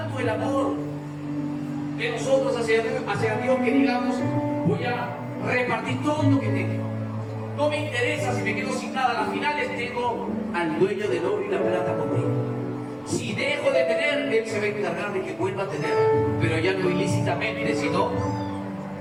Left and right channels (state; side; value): noise; right; rumble, 28 dB below the sound